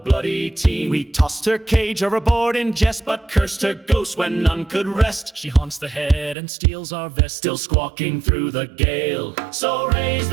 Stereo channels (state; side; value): drops out; left; at 6.4 s